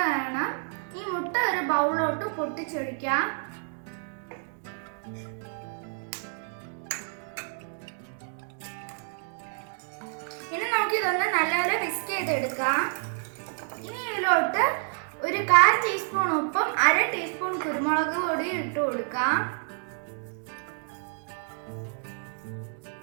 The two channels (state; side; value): silent; left; 59 dB below the other